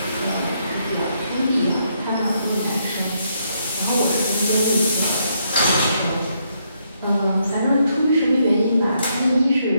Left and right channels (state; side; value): inverted; both; correlation -0.75